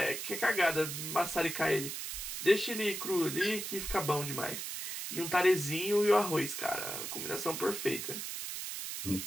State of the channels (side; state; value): right; noise; hiss, 5 dB below the sound